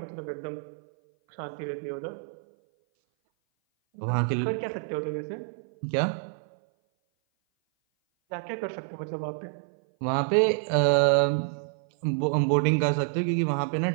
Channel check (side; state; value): left; silent; 57 dB below the other